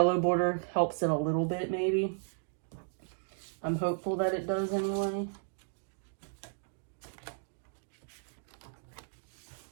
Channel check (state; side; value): silent; left; digital silence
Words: border helps it a little bit, maybe. I'm hopeful that it does anyway.